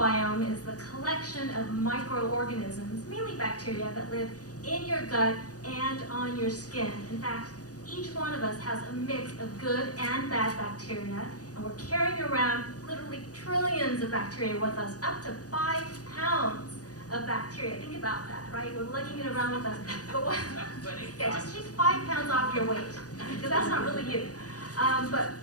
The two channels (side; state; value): right; late; 0.67 ms